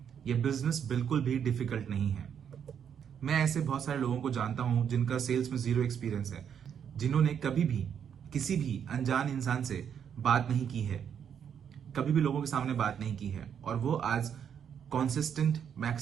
ये बिजनेस बिल्कुल भी डिफिकल्ट नहीं है। मैं ऐसे बहुत सारे लोगों को जानता हूं जिनका सेल्स में जीरो एक्सपीरियंस है, जिन्होंने कभी भी किसी भी अनजान इंसान से बात नहीं की है, कभी भी लोगों के सामने बात नहीं की है, और वो आज कॉन्सिस्टेंट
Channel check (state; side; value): quieter; left; 8.2 dB